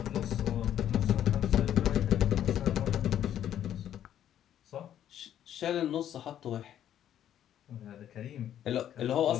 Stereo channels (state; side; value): quieter; right; 10.7 dB